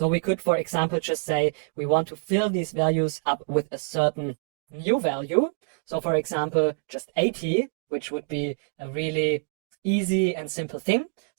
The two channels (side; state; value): left; silent; digital silence